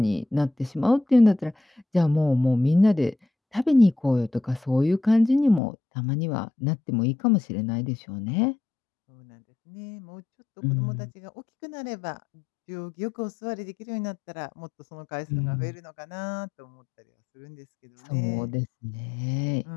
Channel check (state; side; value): drops out; right; at 5.6 s